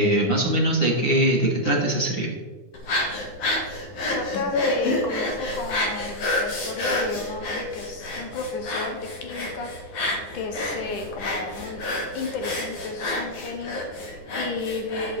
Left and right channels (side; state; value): right; late; 9.8 ms